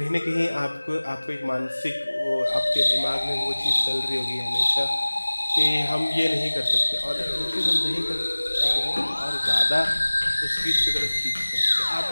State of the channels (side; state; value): both; inverted; correlation -1.00